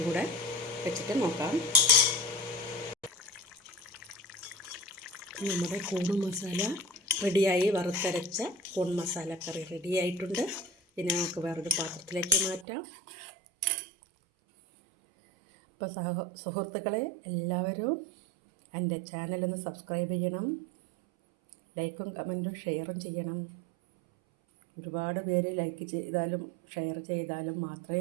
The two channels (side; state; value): left; drops out; at 12.7 s